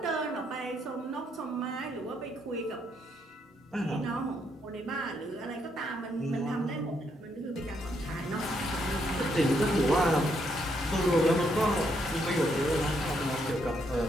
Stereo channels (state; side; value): normal; both; correlation 0.75